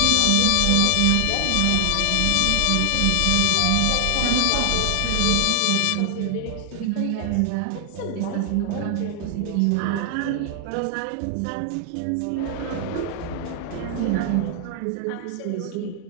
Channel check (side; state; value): both; different; correlation 0.00